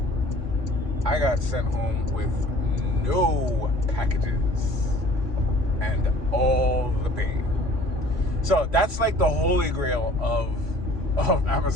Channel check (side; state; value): left; late; 3.6 ms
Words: I got sent home with no packages and all the pain. So that's like the holy grail of